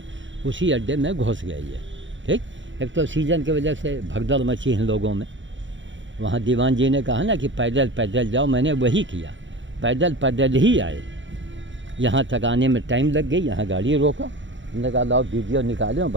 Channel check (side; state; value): left; late; 0.55 ms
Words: उसी अड्डे में घुस गई है। ठीक, एक तो सीजन की वजह से भगदड़ मची इन लोगों में। वहाँ दीवान जी ने कहा ना कि पैदल पैदल जाओ, मैंने वही किया, पैदल पैदल ही आए। यहाँ तक आने में टाइम लग गई, यहाँ गाड़ी रोका, हमने कहा लाओ वीडियो निकालो